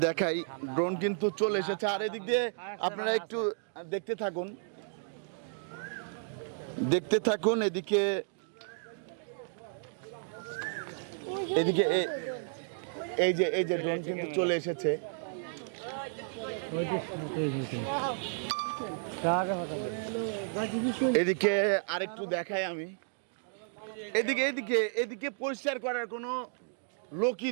দেখাই, ড্রোন কিন্তু চলে এসেছে। আর এদিক দিয়ে আপনারা একটু দেখতে থাকুন, এদিকে এই যে ড্রোন কিন্তু চলে এসেছে। এদিকে আরেকটু দেখাই আমি, এদিকে পরিষ্কার করার কোনো লোকই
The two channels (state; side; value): silent; left; digital silence